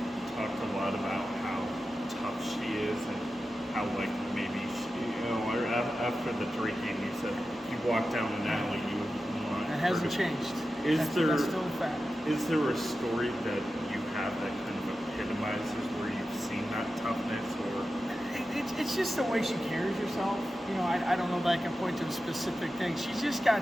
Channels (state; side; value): normal; both; correlation 0.92